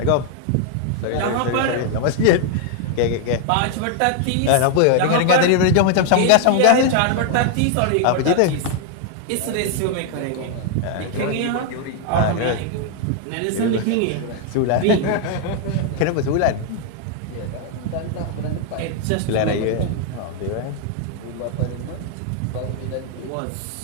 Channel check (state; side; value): different; both; correlation 0.00